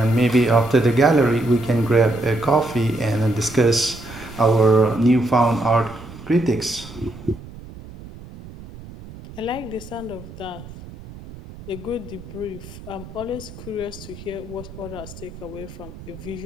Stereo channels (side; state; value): right; noise; rumble, 16 dB below the sound